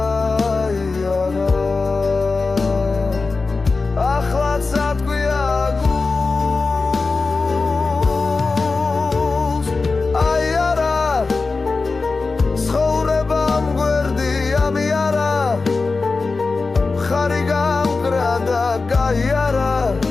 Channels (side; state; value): right; quieter; 4.0 dB